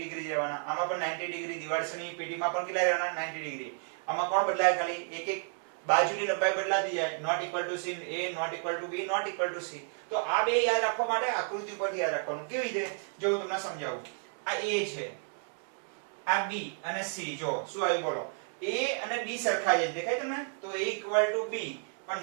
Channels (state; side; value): silent; left; 57 dB below the other